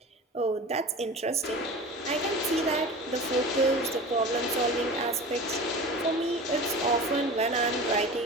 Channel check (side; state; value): both; normal; correlation 0.34